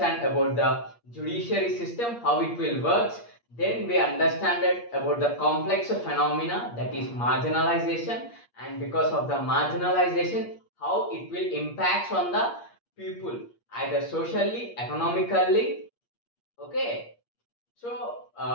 about the judiciary system, how it will works. Then we understand it about the complex phenomena that is marginalization, and because of the marginalization, how it will impacts on the people either socially, economically, okay. So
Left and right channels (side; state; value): right; late; 8.5 ms